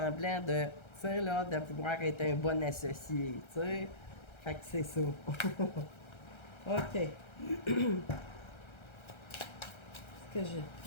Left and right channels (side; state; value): right; late; 1.3 ms